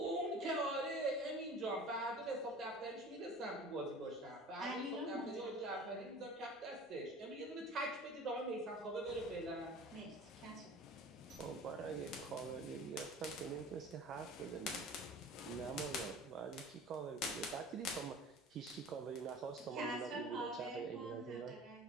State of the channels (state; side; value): normal; both; correlation 0.41